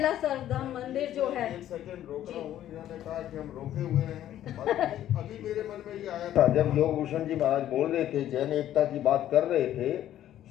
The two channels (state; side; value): quieter; right; 12.1 dB